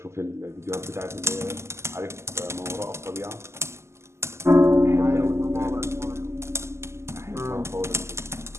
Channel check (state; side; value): late; left; 0.13 ms